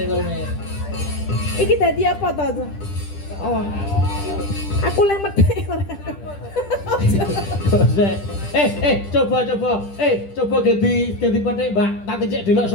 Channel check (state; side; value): late; right; 10 ms